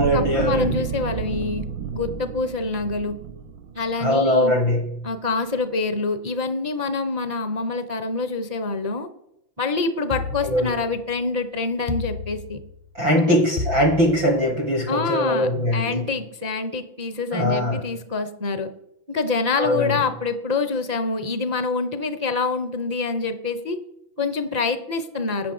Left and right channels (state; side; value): late; left; 5.9 ms